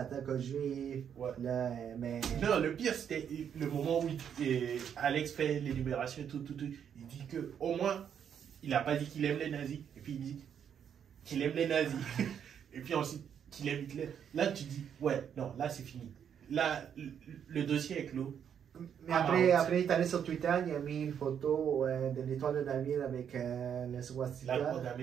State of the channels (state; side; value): quieter; left; 8.4 dB